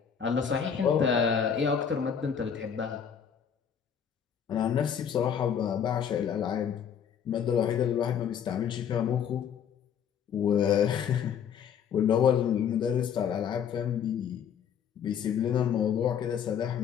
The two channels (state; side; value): quieter; right; 7.9 dB